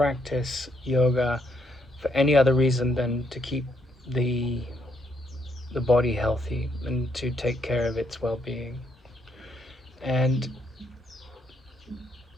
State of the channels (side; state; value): both; normal; correlation 0.74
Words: yoga for any other reason than to keep the the body healthy and to take care of its well-being. And